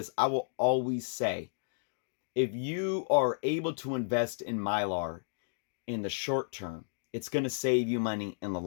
I will always say, if you are able to invest in Mylar in the short term, it's going to save you money in the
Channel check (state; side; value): silent; right; digital silence